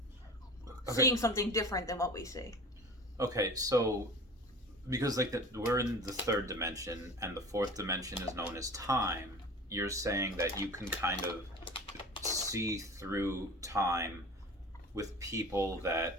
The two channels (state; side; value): normal; both; correlation 0.38